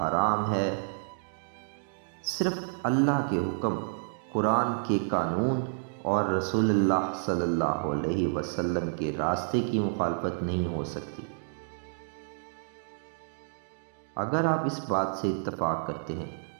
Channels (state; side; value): silent; left; digital silence